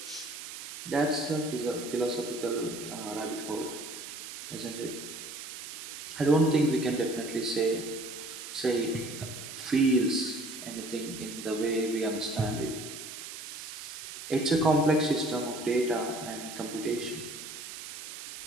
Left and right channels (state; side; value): noise; right; hiss, 10 dB below the sound